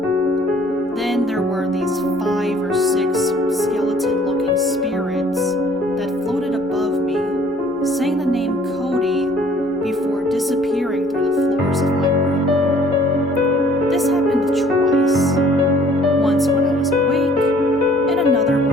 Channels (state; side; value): normal; both; correlation 0.57